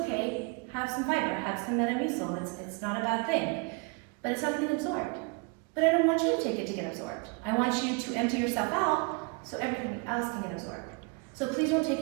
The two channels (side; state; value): left; quieter; 31.3 dB